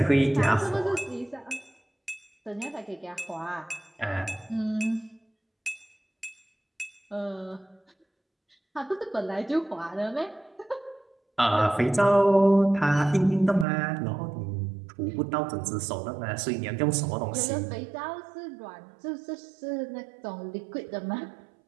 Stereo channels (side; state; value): left; drops out; at 13.7 s